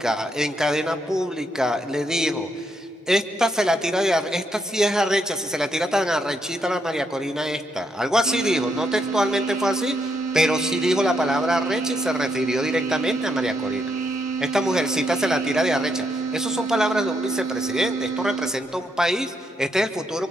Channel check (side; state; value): both; normal; correlation 0.77